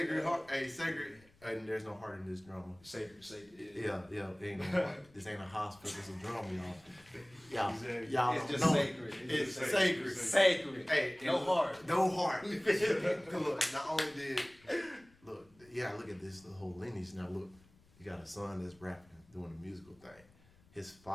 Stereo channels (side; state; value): left; noise; rumble, 28 dB below the sound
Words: heart. Hey, sacred. And there's no heart in this drama. Sacred. Yeah, ain't no heart. This ain't a hospital. It's a drama, y'all. Exactly. Y'all It's don't just know. sacred. It's just sacred. Sacred. Hey, No and heart. No heart. Look, not only did look at this the whole lineage. Now look, you got a son that's rapping, doing a musical thing. His